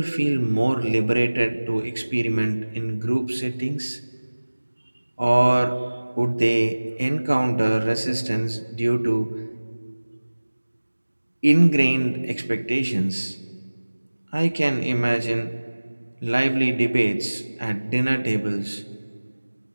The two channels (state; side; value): inverted; both; correlation -1.00